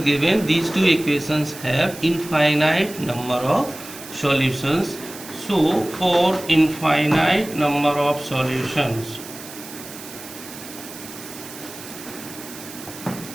given, these two equations have infinite number of solutions. So for infinite number of solutions,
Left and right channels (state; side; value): noise; right; hiss, 14 dB below the sound